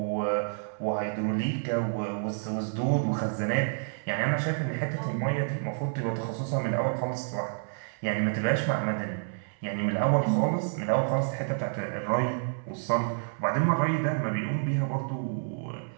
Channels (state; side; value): silent; left; 59 dB below the other